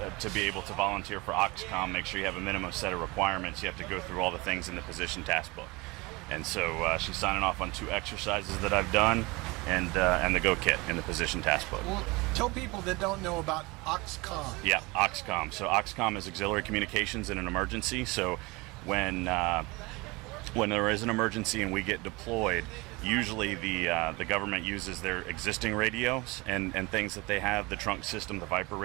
to be able to volunteer for AUXCOMM, make sure you have a minimum set of requirements. You have to go through all the things in the position task book. And so she's signing off on 2 exercises that I've done and the Go Kit in the position task book. Well, tell people that don't know about AUXCOMM. Yeah, AUXCOMM. So AUXCOMM is auxiliary communications in an emergency. So when there is an emergency and we get deployed, usually the government uses their existing radios and things that they have, the trunk system, the Viper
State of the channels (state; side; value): quieter; left; 24.4 dB